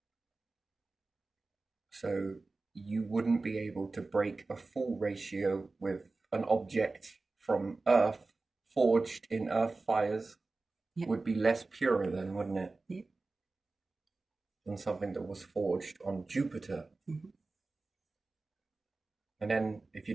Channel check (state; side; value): quieter; left; 3.6 dB